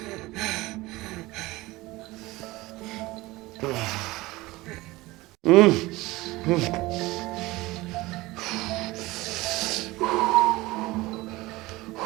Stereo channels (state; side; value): quieter; left; 20.1 dB